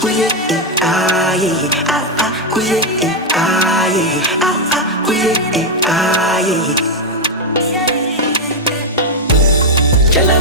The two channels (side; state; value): both; normal; correlation 0.02